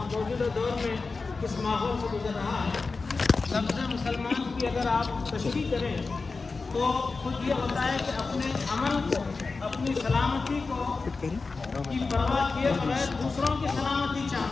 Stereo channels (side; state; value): right; quieter; 4.1 dB